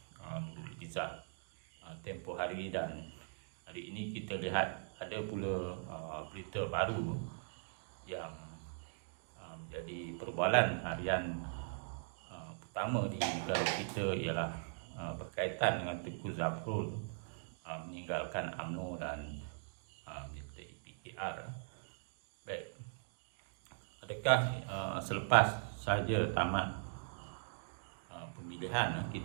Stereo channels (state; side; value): silent; left; digital silence